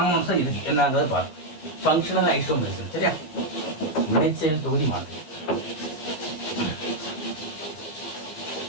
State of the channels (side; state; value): right; late; 13 ms